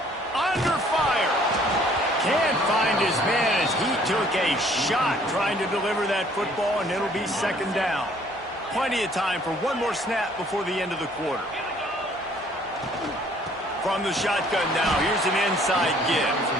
Under fire. Can't find his man as he took a shot trying to deliver that football, and it'll be 2nd down. Plenty of time for one more snap before the end of the quarter. From the shotgun now, here's an inside give.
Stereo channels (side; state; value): both; normal; correlation 0.59